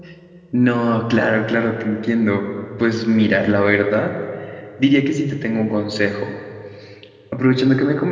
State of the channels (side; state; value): both; identical; correlation 1.00